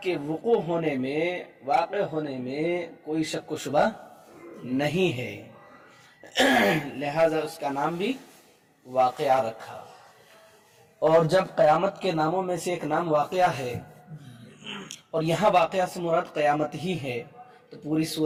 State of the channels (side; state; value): both; identical; correlation 1.00